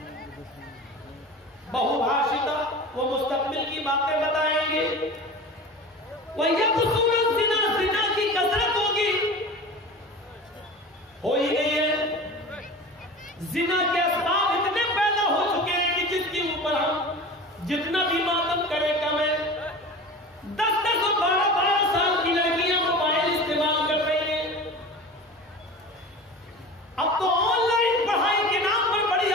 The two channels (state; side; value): normal; both; correlation 0.35